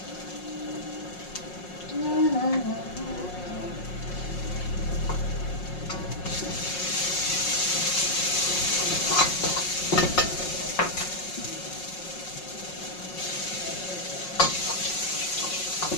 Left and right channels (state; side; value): late; right; 5.5 ms